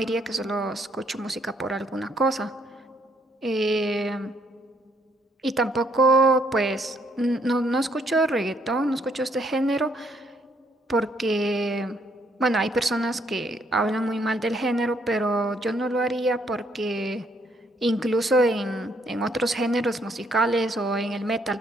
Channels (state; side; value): normal; both; correlation 0.69